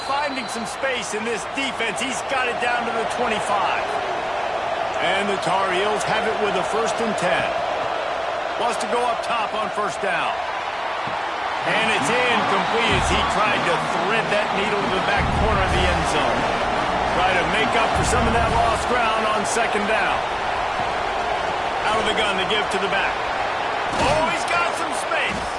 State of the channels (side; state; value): both; identical; correlation 1.00